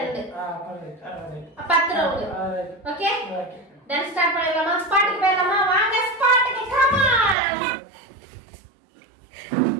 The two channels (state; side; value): drops out; left; at 7.4 s